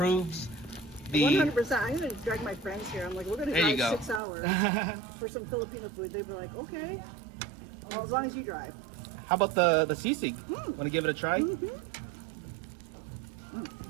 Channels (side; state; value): left; drops out; at 4.2 s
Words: the. 100%. I'm going to drag my friends here. I'm like, we're going to There you drive go. 6 hours for some Filipino food. They'd be like, okay. Well, as long as you drive. How about the sisig? Want to give it a try?